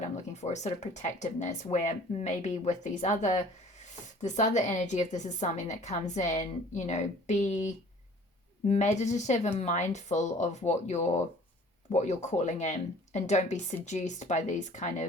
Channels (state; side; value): normal; both; correlation 0.50